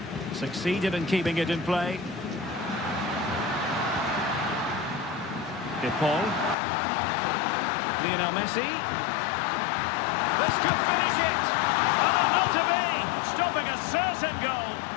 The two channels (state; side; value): drops out; right; at 6.6 s